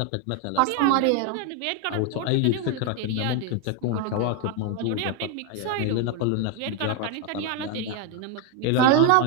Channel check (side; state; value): both; different; correlation 0.01